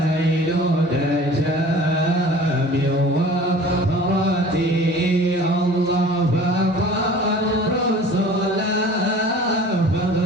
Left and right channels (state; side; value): normal; both; correlation 0.44